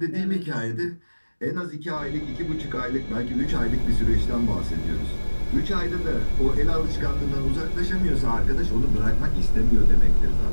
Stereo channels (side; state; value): both; inverted; correlation -1.00